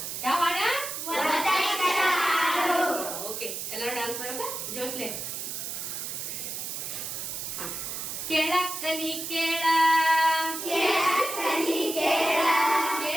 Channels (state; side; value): noise; right; hiss, 5 dB below the sound